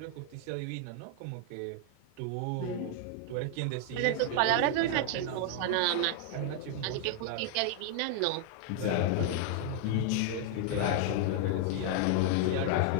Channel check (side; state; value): both; different; correlation 0.00